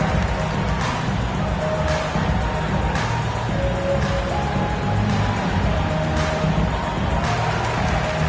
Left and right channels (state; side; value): identical; both; correlation 1.00